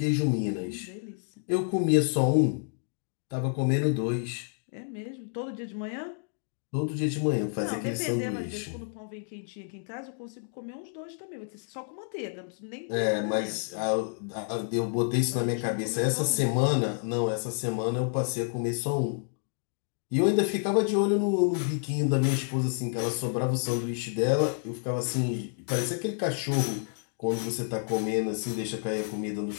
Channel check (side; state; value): right; silent; digital silence